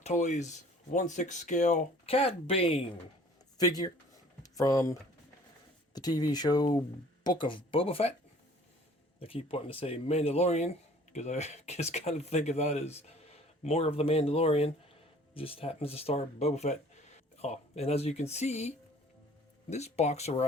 Toys 1/6 scale Cad Bane figure from the TV show Book of Boba Fett. I keep wanting to say Mandalorian because I just kind of think of that as more of the Mandalorian. It just happens to star Boba Fett. Oh, and as you can see, this box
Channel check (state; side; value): normal; both; correlation 0.52